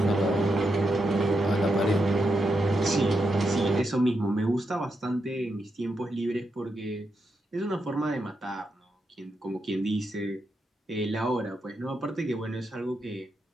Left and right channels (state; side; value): normal; both; correlation 0.84